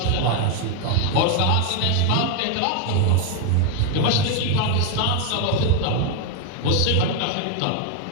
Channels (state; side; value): different; both; correlation 0.01